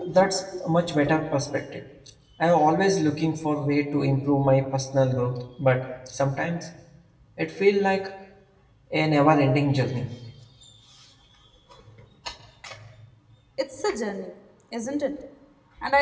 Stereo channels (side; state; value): both; identical; correlation 1.00